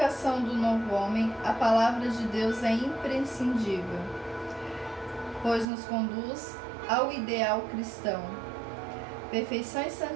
do novo homem, a palavra de Deus é imprescindível, pois nos conduz ao ideal cristão, perfeição e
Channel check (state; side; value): drops out; left; at 5.7 s